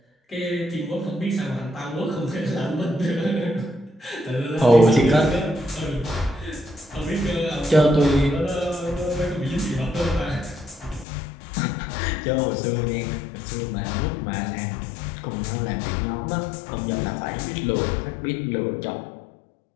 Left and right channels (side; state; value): right; drops out; at 11.1 s